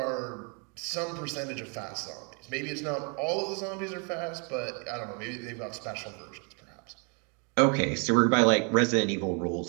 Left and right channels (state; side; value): quieter; left; 35.2 dB